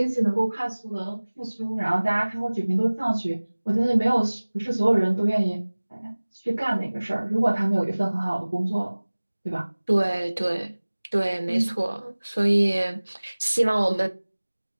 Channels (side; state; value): both; inverted; correlation -1.00